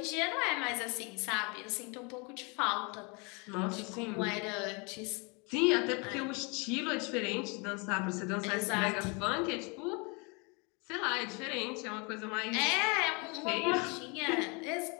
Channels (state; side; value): quieter; right; 31.3 dB